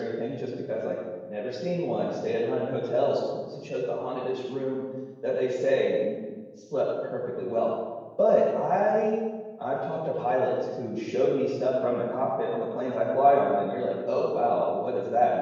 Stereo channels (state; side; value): identical; both; correlation 1.00